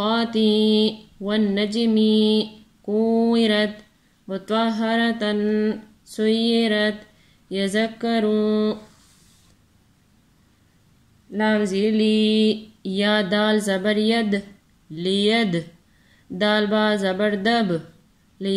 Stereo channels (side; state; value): both; identical; correlation 1.00